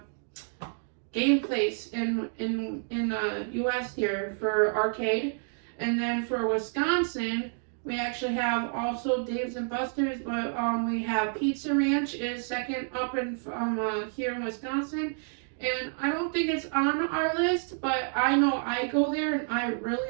game place in U.S. here for arcade. And then for Wisconsin, we actually have also Dave's and Buster's, but we have Pizza Ranch is second up in here in Wisconsin. And I don't think it's on our list, but I know I go there and I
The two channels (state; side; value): silent; left; 58 dB below the other